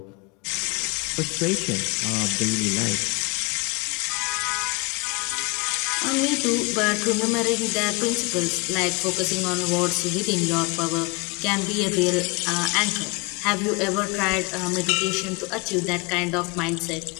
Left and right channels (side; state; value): right; quieter; 28.3 dB